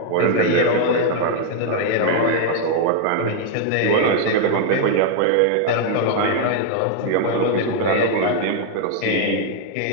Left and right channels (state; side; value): different; both; correlation 0.00